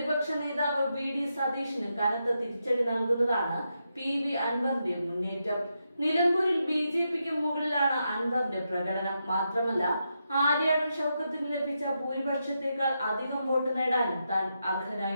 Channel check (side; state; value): both; inverted; correlation -0.84